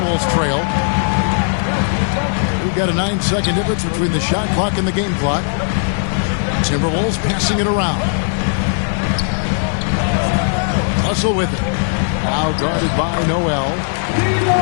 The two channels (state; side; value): silent; right; 64 dB below the other